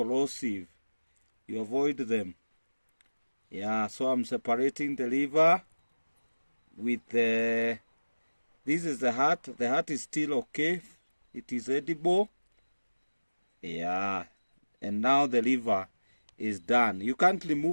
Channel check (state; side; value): inverted; both; correlation -1.00